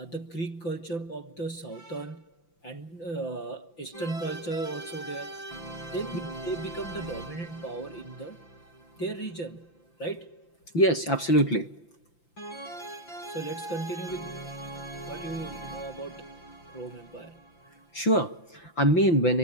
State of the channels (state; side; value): late; right; 5.9 ms